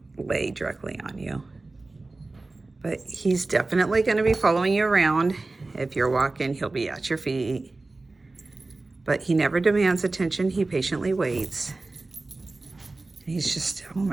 lay directly on you. But he's definitely going to be following you around. If you're walking, he'll be at your feet. But he never demands attention. He patiently waits. He's just, oh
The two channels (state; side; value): quieter; left; 3.3 dB